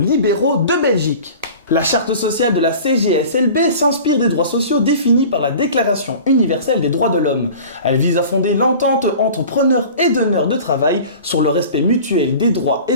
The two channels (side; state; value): both; inverted; correlation -0.41